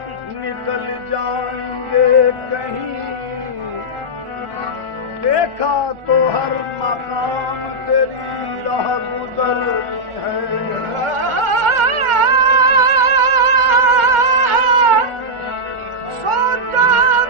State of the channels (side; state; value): left; late; 1.4 ms